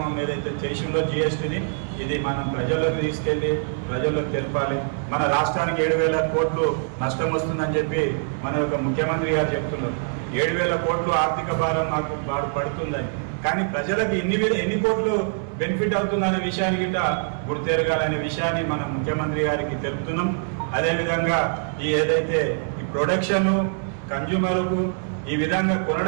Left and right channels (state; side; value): silent; left; 63 dB below the other